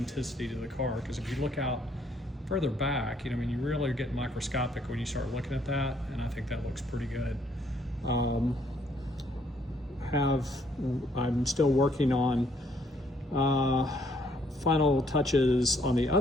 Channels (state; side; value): normal; both; correlation 0.67